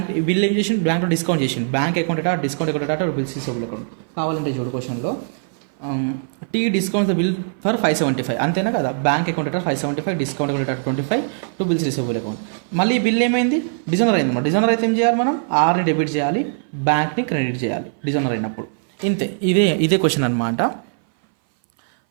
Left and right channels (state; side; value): silent; left; 60 dB below the other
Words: బిల్ ఏం చేసిండు? బ్యాంక్లో డిస్కౌంట్ చేసిండు. Bank account discount account bills receivable account. కావాలంటే చూడు క్వశ్చన్లో T discount the bill for 575 అంతేనా కదా. Bank account 575, discount account 25 to bills receivable account. మళ్ళీ బిల్ ఏమైంది? డిజైనర్ అయింది అనమాట. డిజైనర్ అయితే ఏం చేయాలి? మనం ఆర్ని డెబిట్ చేయాలి, బ్యాంక్ని క్రెడిట్ చేయాలి డిజైనర్ అయినప్పుడు. ఇంతే, ఇదే క్వశ్చన్ అనమాట.